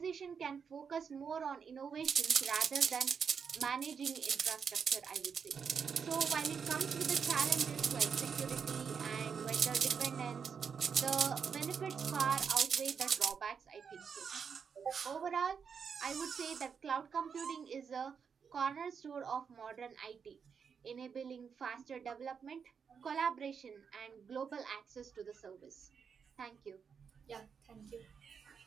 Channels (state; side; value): quieter; left; 6.5 dB